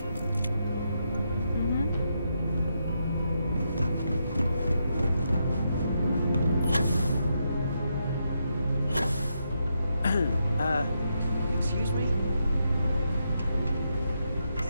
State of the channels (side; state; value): both; inverted; correlation -0.82